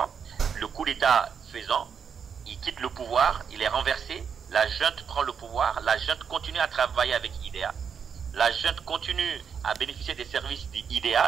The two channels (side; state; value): left; quieter; 6.9 dB